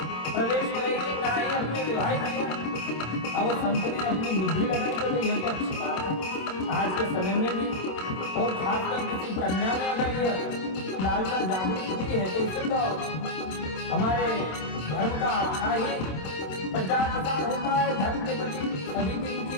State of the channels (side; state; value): right; late; 27 ms